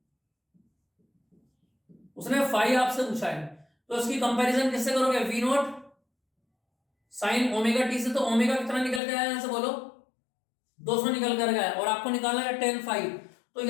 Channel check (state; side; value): drops out; right; at 9.0 s